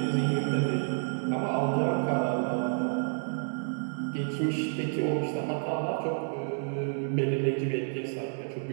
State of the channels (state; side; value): silent; left; digital silence